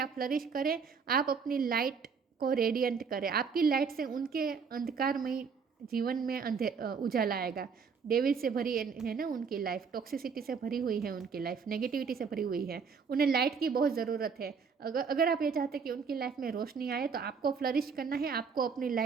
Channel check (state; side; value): quieter; left; 5.8 dB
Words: फ्लरिश करें, आप अपनी लाइट को रेडियंट करें। आपकी लाइट से उनके अंधकारमय जीवन में उजाला आएगा। डेविल से भरी है ना उनकी लाइफ, टॉक्सिसिटी से भरी हुई है उनकी लाइफ, नेगेटिविटी से भरी हुई है, उन्हें लाइट की बहुत ज़रूरत है। अगर आप ये चाहते हैं कि उनकी लाइफ में रोशनी आए, तो आपको फ्लरिश करना है, आपको अपनी